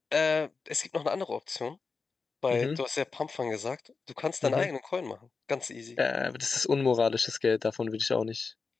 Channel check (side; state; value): right; quieter; 4.6 dB